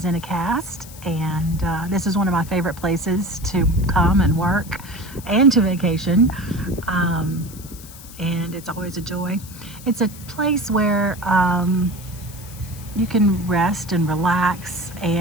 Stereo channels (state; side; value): noise; left; hiss, 17 dB below the sound